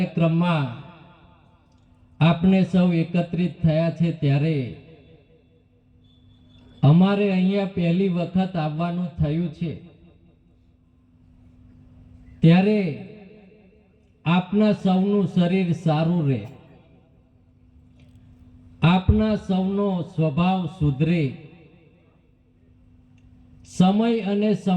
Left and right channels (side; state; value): both; identical; correlation 1.00